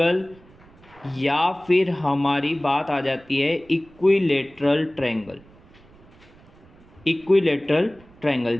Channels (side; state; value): right; noise; rumble, 26 dB below the sound